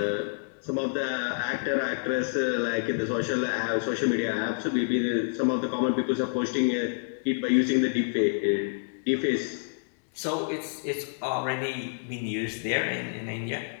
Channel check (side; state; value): right; silent; digital silence